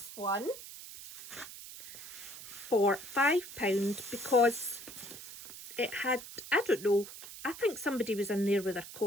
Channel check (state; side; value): noise; right; hiss, 13 dB below the sound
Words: one for £5 because it had, I don't know, I think somebody was in there with their